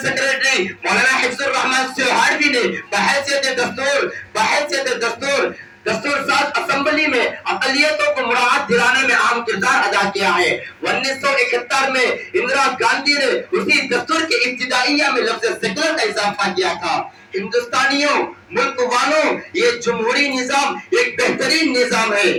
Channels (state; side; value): identical; both; correlation 1.00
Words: سیکریٹری مولانا حفظ الرحمان سہاروی نے بحیثیت دستور ساز اسمبلی میں اقلیتوں کو مراعات دلانے میں اہم کردار ادا کیا ہے۔ 1971 میں اندرا گاندھی نے اسی دستور کے ابتدائیہ میں لفظ سیکولر کا اضافہ کیا تھا۔ ہندوستانیوں، ملک والوں، یہ جمہوری نظام ایک بہترین نظام ہے،